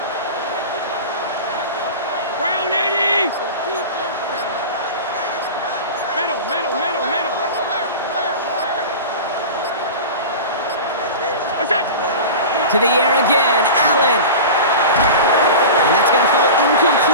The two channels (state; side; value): inverted; both; correlation -0.31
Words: Brown 80. Middle. What's that? To the air again, Allen. And that's going to fall